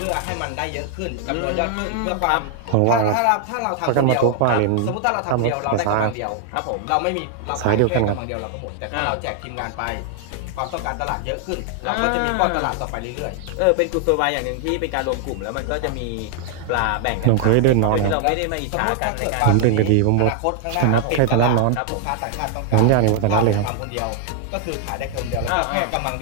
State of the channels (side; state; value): both; different; correlation 0.00